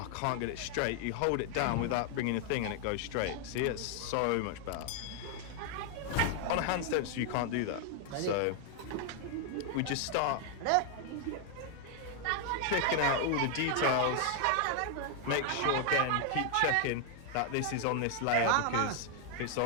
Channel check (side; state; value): both; different; correlation 0.00